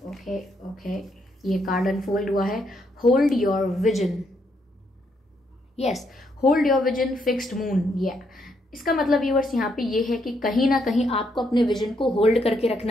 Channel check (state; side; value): normal; both; correlation 0.75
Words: ये कार्ड अनफोल्ड हुआ है, hold your vision. Yes, hold your vision, fixed moon. इसका मतलब व्यूअर्स यहाँ पे ये है कि कहीं ना कहीं आपको अपने विजन को होल्ड करके